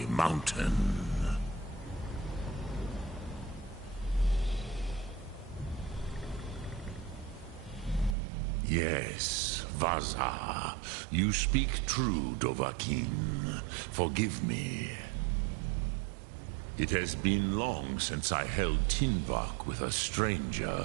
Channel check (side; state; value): left; drops out; at 8.2 s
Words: mountain? Yes, Vaza, you speak true, Dovahkiin. Forgive me. It has been long since I held Tinvak with a